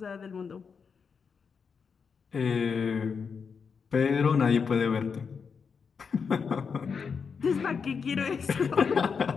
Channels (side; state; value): right; quieter; 5.9 dB